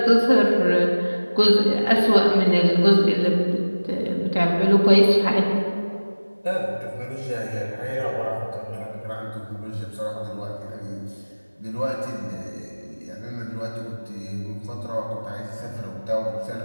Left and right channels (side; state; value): both; inverted; correlation -1.00